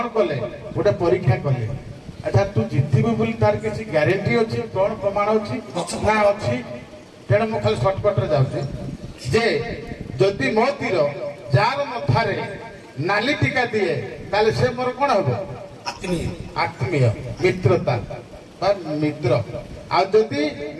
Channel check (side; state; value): both; identical; correlation 1.00